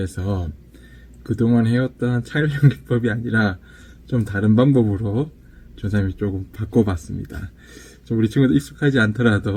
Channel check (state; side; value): identical; both; correlation 1.00